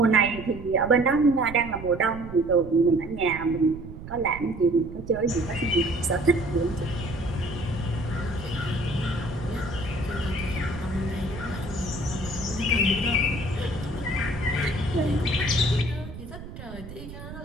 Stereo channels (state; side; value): noise; right; rumble, 12 dB below the sound